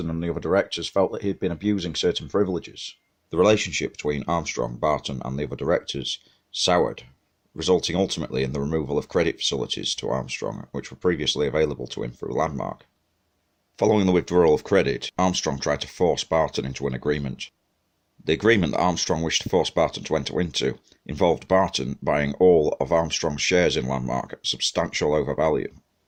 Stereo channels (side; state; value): both; identical; correlation 1.00